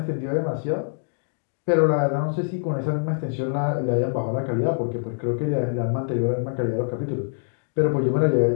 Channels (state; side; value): silent; right; digital silence